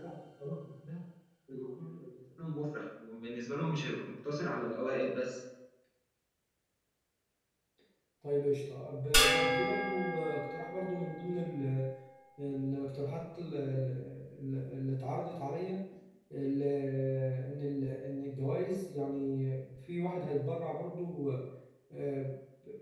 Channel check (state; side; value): identical; both; correlation 1.00